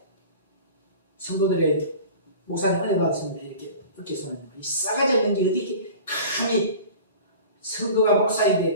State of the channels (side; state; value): both; inverted; correlation -0.40